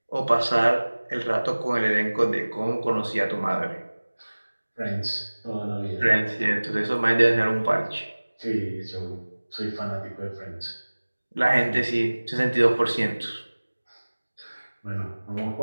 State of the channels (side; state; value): both; inverted; correlation -1.00